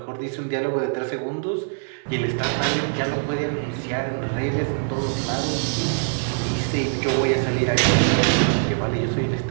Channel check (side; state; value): left; silent; 63 dB below the other